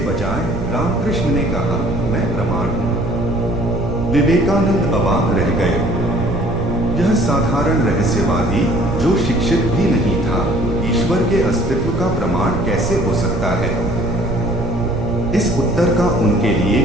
बजाय रामकृष्ण ने कहा, मैं प्रमाण हूं। विवेकानंद अवाक रह गए। यह साधारण रहस्यवादी जो शिक्षित भी नहीं था, ईश्वर के अस्तित्व का प्रमाण कैसे हो सकता है? इस उत्तर का उनके लिए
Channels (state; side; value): noise; right; rumble, 6 dB below the sound